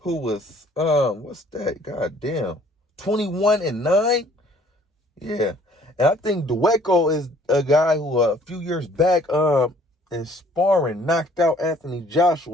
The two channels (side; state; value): both; normal; correlation 0.57